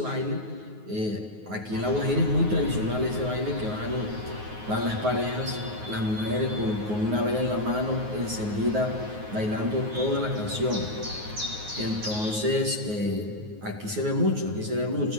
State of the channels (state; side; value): late; left; 9.5 ms